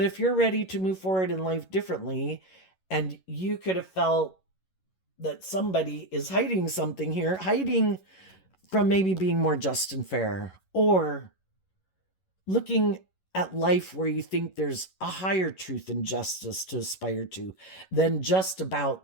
if you're ready to move forward in life differently, and you could have felt that somebody is hiding something here, hiding from maybe being more just and fair, or looking at life where you think there's a higher truth and justice to aspire to than just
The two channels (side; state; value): right; late; 11 ms